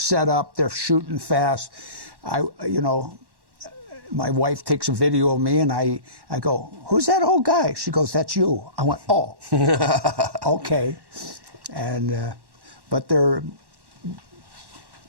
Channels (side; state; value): left; late; 1.1 ms